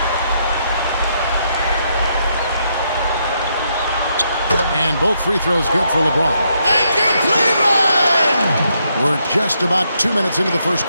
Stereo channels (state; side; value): inverted; both; correlation -0.77